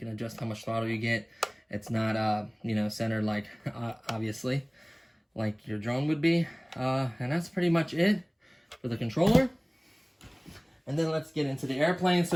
adjust how much throttle you get. It's not, you know, centered like, obviously, like your drone would be. And that's pretty much it for the controller. And then let's get into the airplane. So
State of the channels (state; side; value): identical; both; correlation 1.00